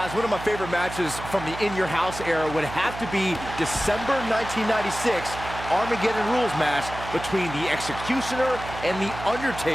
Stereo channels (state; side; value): noise; right; hum, 11 dB below the sound